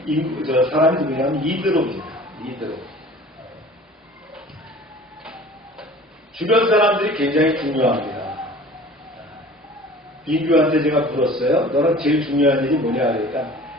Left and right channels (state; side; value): normal; both; correlation 0.45